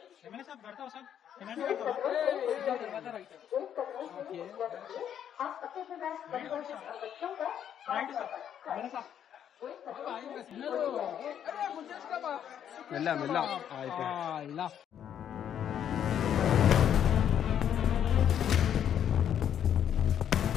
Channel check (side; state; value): right; quieter; 9.4 dB